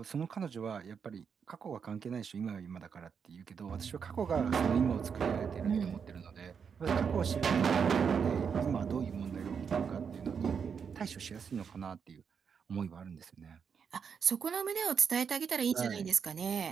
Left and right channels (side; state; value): left; quieter; 6.6 dB